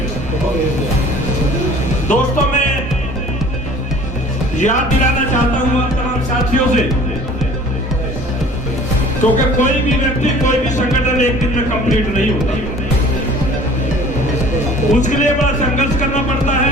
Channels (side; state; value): both; normal; correlation 0.49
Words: दोस्तों, मैं याद दिलाना चाहता हूं आप तमाम साथियों से, क्योंकि कोई भी व्यक्ति, कोई भी संगठन एक दिन में कंप्लीट नहीं होता। उसके लिए बड़ा संघर्ष करना पड़ता है,